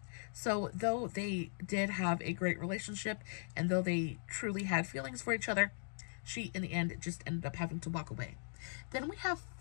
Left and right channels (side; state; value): right; silent; digital silence